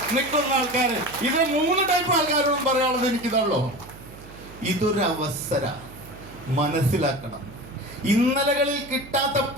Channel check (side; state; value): right; noise; hum, 18 dB below the sound